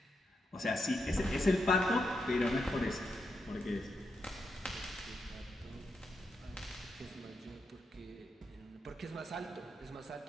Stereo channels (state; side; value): normal; both; correlation 0.83